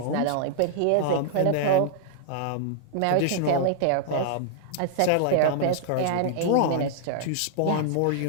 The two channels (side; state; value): both; different; correlation -0.01